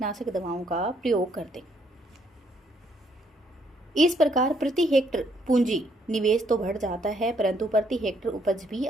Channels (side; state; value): both; normal; correlation 0.70